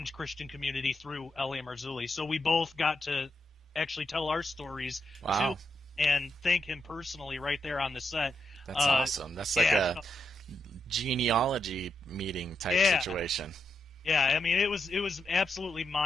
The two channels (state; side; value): normal; both; correlation 0.83